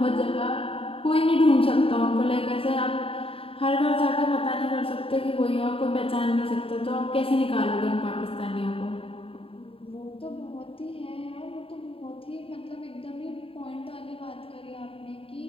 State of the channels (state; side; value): late; right; 0.27 ms